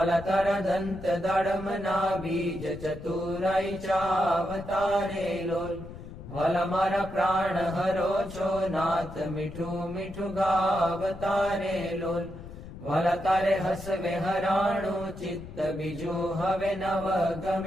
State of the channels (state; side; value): noise; left; rumble, 13 dB below the sound